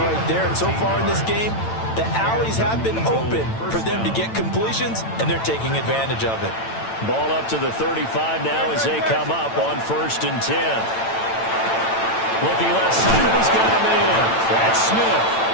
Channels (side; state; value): right; late; 8.9 ms